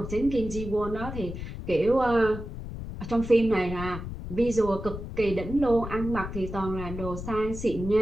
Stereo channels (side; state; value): left; noise; rumble, 8 dB below the sound